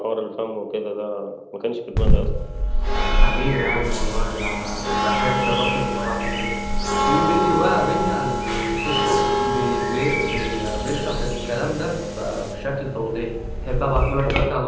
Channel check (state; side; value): identical; both; correlation 1.00